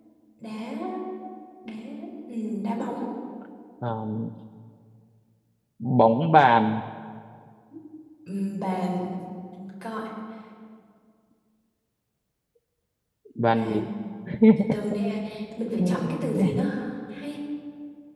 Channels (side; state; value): both; identical; correlation 1.00